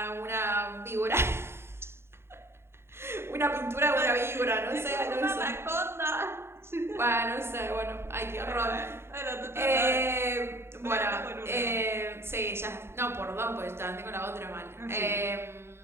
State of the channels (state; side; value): late; left; 0.12 ms